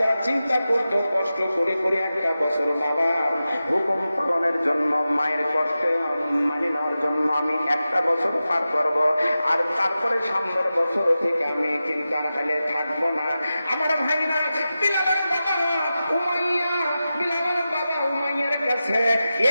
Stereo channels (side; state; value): both; inverted; correlation -0.93